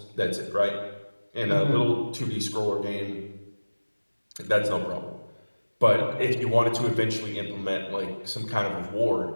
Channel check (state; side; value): inverted; both; correlation -1.00